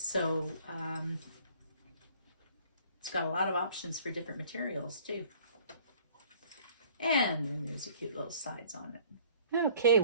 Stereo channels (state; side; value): inverted; both; correlation -0.54